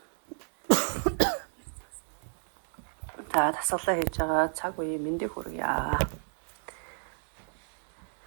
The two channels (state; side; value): silent; left; 57 dB below the other